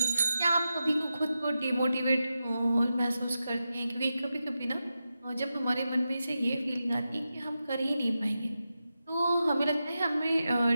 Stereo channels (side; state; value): both; inverted; correlation -0.90